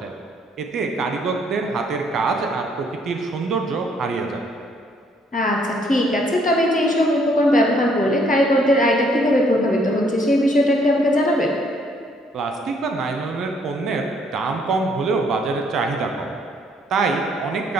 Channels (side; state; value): both; normal; correlation 0.66